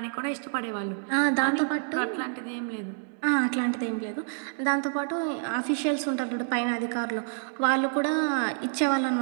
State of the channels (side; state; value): left; silent; digital silence